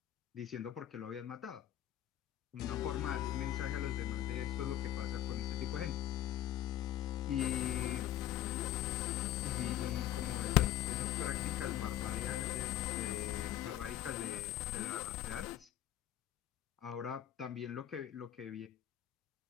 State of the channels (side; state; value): right; quieter; 12.4 dB